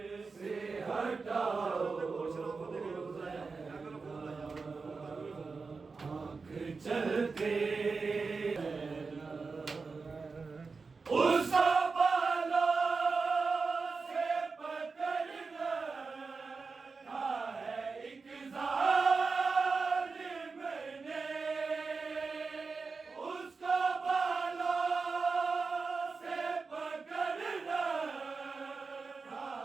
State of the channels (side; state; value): left; quieter; 4.5 dB